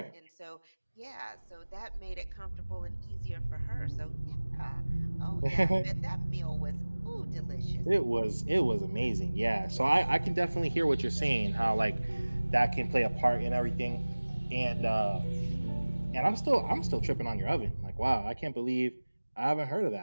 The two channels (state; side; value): inverted; both; correlation -1.00